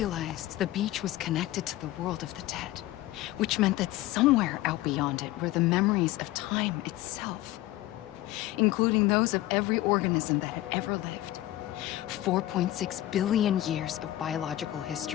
the beach was connected to the world of the dead, which meant that somewhere out beyond it were the memories of time itself, including those of every organism that had ever lived. 4.6 billion years of biological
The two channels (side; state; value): right; quieter; 15.7 dB